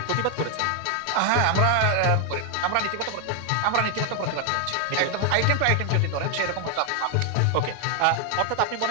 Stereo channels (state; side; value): different; both; correlation 0.00